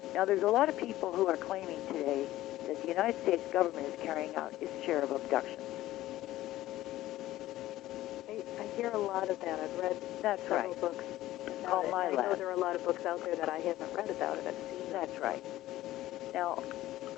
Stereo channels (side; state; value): right; quieter; 15.4 dB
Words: Now, there's a lot of people who are claiming today that the United States government is carrying out its share of abductions. I hear a lot of that. I've read several books about it. I know there are a lot of books out there that I haven't read about it. I've seen them. That's right. Now,